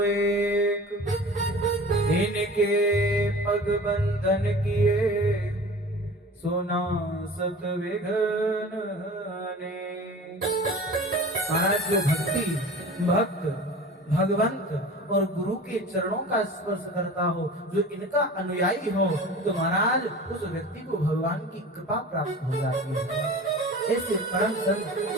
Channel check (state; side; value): normal; both; correlation 0.39